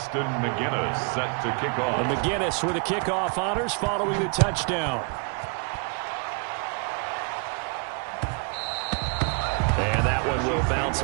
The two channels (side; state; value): left; quieter; 35.5 dB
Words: McGinnis set to kick off. And McGinnis with the kickoff honors following the touchdown. And that one will bounce